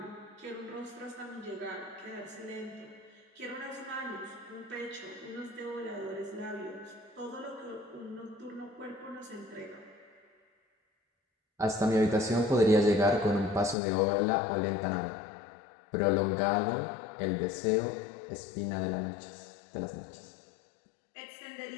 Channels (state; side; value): drops out; right; at 13.8 s